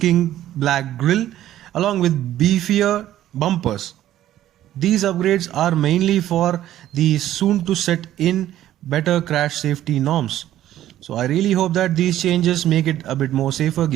black grille along with beefier bumpers. These upgrades are mainly for the soon to set in better crash safety norms. So I really hope that these changes make it a bit more safer,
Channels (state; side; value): quieter; left; 12.8 dB